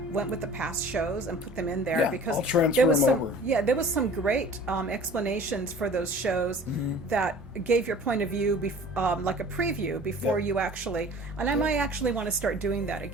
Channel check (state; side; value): normal; both; correlation 0.45